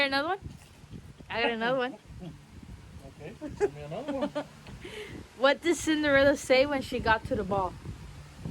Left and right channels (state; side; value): identical; both; correlation 1.00